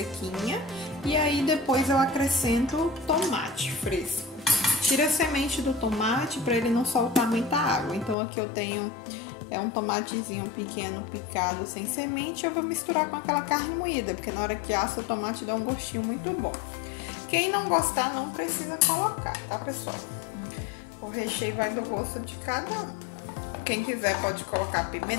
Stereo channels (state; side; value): drops out; right; at 8.2 s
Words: E aí depois eu acrescento tomate fresco. Tira a semente do tomate para ele não soltar muita água. Então aqui eu tenho um tomatezinho pequeno picado sem semente. Eu vou misturar com aquela carne moída, porque na hora que assa o tomate dá um gostinho muito bom. Quem não gostar não precisa colocar, tá pessoal? O recheio vai do gosto de cada um. Quem quiser pode colocar